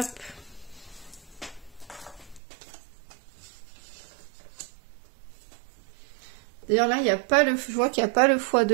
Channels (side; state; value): left; drops out; at 2.4 s